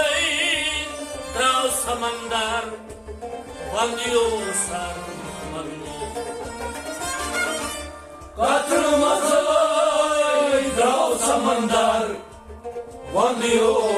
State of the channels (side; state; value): both; identical; correlation 1.00